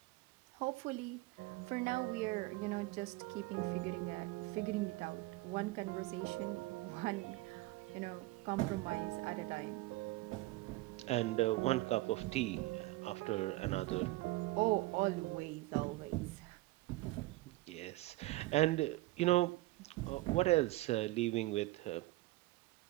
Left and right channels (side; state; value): left; quieter; 19.6 dB